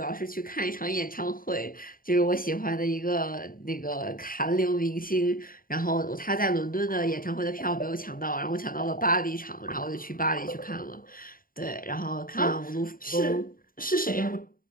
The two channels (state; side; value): late; right; 0.41 ms